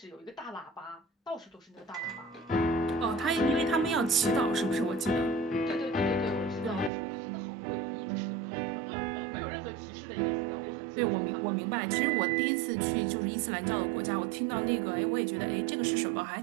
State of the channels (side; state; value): left; drops out; at 6.9 s